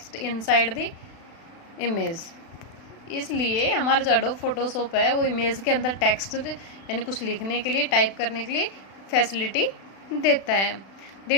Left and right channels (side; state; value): right; late; 36 ms